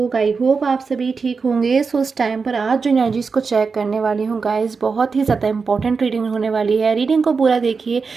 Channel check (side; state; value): left; quieter; 4.9 dB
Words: आई होप आप सभी ठीक होंगे। सो उस टाइम पर आज जो एनर्जीज़ को चेक करने वाली हूँ गाइस, बहुत ही ज़्यादा इंपॉर्टेंट रीडिंग होने वाली है। रीडिंग को पूरा देखिए,